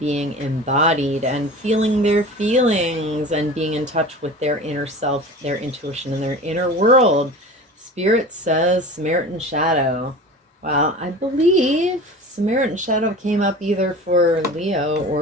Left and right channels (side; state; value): both; normal; correlation 0.36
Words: embodied and feeling their feelings and being in touch with their inner self, their intuition, and their inner world? Spirit says Samaritan Shadow. Well, I believe Samaritan Shadow came up either for Leo